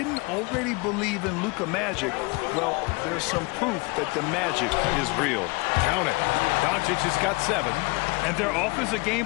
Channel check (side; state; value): right; quieter; 27.3 dB